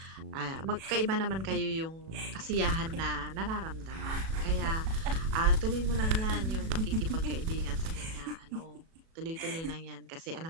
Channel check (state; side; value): late; left; 37 ms